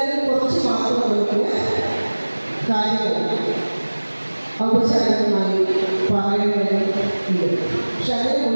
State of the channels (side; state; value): both; inverted; correlation -1.00